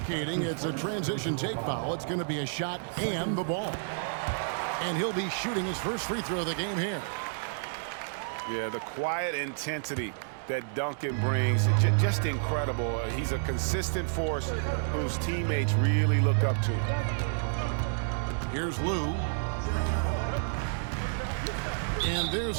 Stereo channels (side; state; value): left; silent; 58 dB below the other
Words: it's a transition take foul. It's going to be a shot and the ball. And he'll be shooting his first free throw of the game here. Yeah, the quiet intensity that Duncan brings, just incredible. He's a consistent force whose teammates really look up to. Here's Lou. And